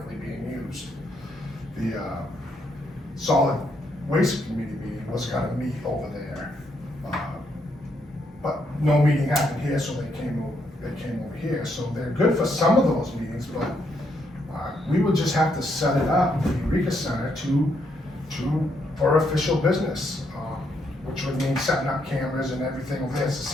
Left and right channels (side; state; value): both; normal; correlation 0.76